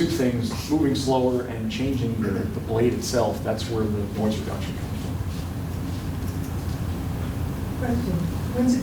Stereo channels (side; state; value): both; identical; correlation 1.00